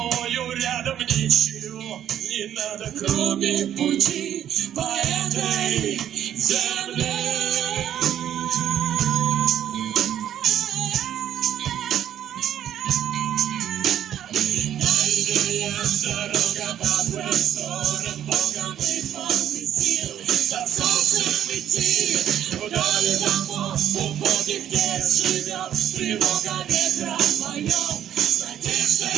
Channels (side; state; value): left; quieter; 10.5 dB